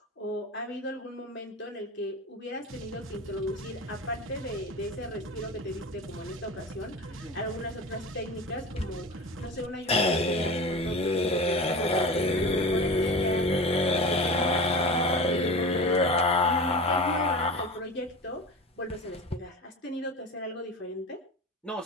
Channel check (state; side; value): normal; both; correlation 0.31